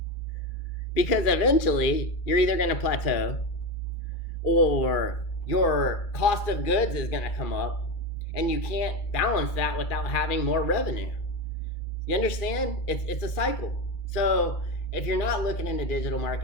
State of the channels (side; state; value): right; late; 2.4 ms